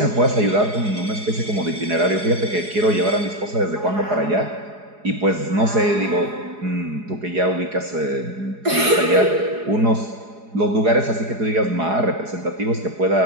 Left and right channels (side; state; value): left; late; 4.8 ms